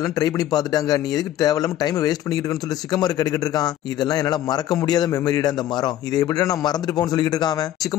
ட்ரை பண்ணி பார்த்துட்டாங்க, நீ எதுக்கு தேவையில்லாம டைம் வேஸ்ட் பண்ணிக்கிட்டு இருக்கன்னு சொல்லி சிக்கமாரு கேட்டுக்கிட்டு இருக்கான். இதெல்லாம் என்னால மறக்க முடியாத மெமரிடா இந்த மரம், இதை எப்படி நான் மறந்துட்டு போன்னு சொல்லிட்டு இருக்கான்.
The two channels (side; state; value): right; quieter; 12.5 dB